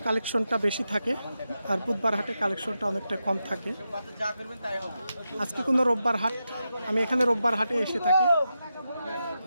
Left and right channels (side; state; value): both; inverted; correlation -0.88